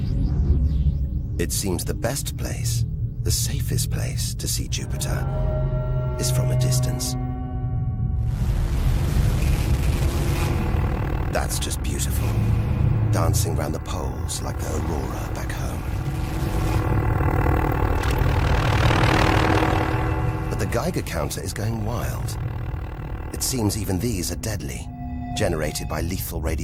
It seems the best place, the safest place to see Jupiter is from a distance. That's just beautiful, dancing round the poles like the aurora back home. But the Geiger counter is going wild. It seems even these are deadly, generated by lethal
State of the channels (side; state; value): both; identical; correlation 1.00